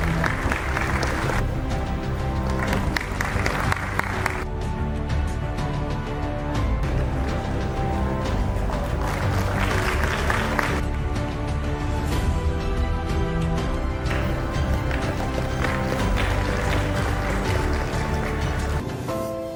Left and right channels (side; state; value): both; identical; correlation 1.00